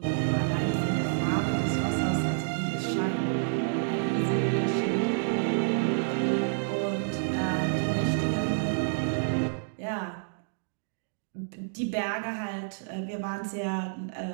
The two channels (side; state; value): left; silent; digital silence